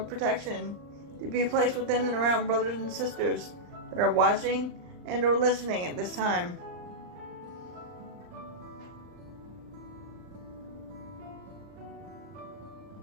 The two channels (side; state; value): left; late; 39 ms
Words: protection to be placed within and around brothers and sisters that are watching and or listening at this time.